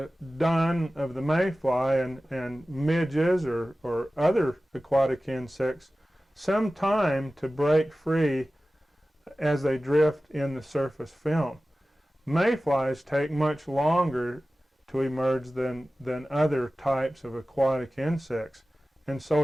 dun of the mayfly and midges or other aquatic insects some time to break free as they drift in the surface film. Mayflies take much longer to emerge than other types of aquatic insects, and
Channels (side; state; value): both; normal; correlation 0.96